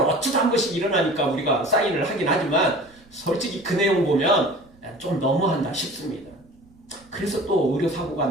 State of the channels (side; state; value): right; noise; rumble, 29 dB below the sound